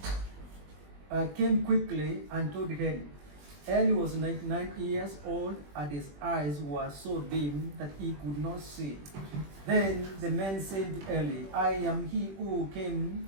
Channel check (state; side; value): late; left; 21 ms